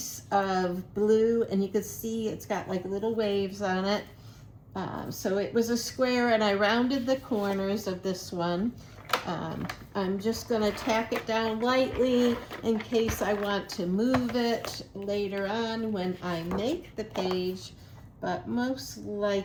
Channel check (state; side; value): identical; both; correlation 1.00